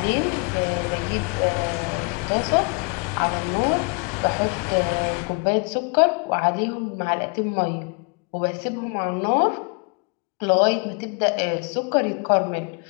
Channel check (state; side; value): quieter; right; 33.3 dB